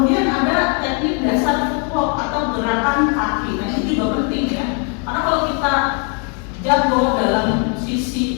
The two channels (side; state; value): right; quieter; 38.4 dB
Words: ada teknik dasar footwork atau gerakan kaki. Nah, ini juga penting ya. Karena kalau kita jago dalam